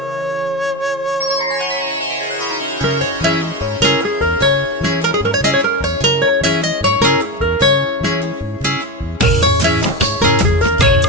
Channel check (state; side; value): normal; both; correlation 0.20